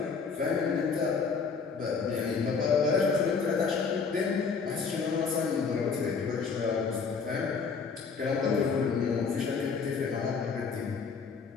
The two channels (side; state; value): right; quieter; 5.3 dB